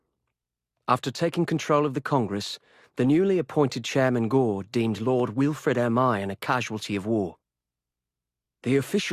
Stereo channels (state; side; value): identical; both; correlation 1.00